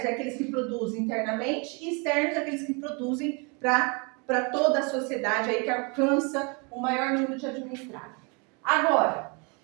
é aqueles que produzem internamente e externos é aqueles que produzem para toda a sociedade aí que alcança o maior número de administrados. Agora,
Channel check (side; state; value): left; quieter; 32.3 dB